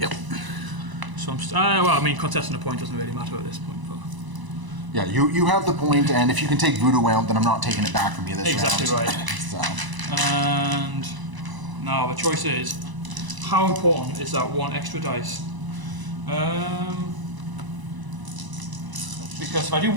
So contesting a point doesn't really matter at this point. But Yeah, you have the point, and if you can take Voodoo out, then I'm not taking it back from you this exactly round. right. So. And now the choice is, how important is that 1 extra dice? Because if I do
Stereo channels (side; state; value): left; late; 1.0 ms